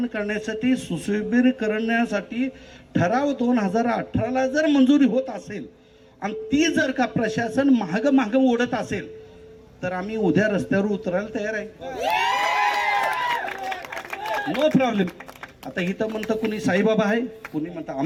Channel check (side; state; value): both; identical; correlation 1.00